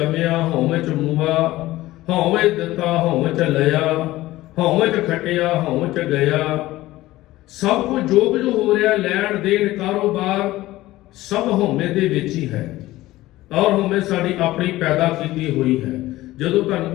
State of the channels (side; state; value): right; quieter; 17.0 dB